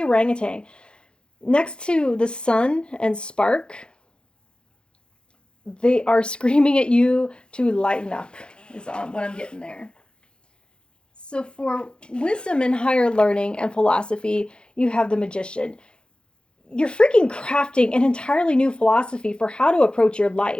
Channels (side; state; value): right; late; 0.051 ms